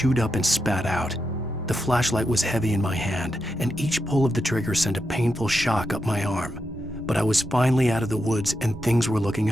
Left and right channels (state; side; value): normal; both; correlation 0.85